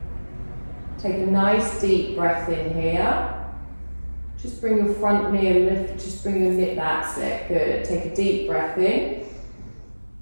Take a nice deep breath in here. Just bring your front knee a little, just bring your knee, that's it, good. Take a deep breath in.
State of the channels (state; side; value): inverted; both; correlation -1.00